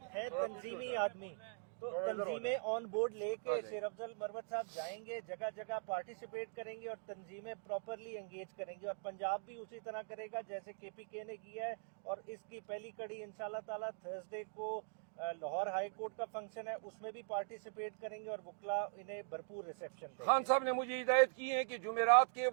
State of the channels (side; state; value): left; silent; digital silence